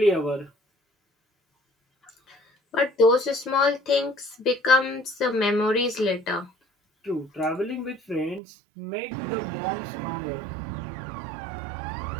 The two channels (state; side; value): drops out; left; at 8.4 s